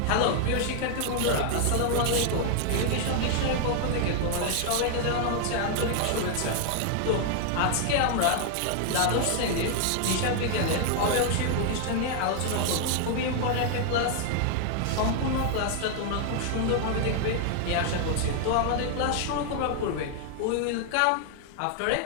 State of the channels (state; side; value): different; both; correlation 0.00